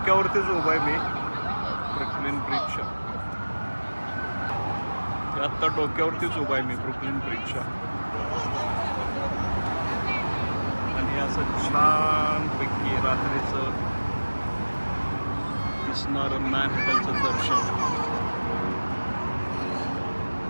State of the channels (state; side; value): inverted; both; correlation -1.00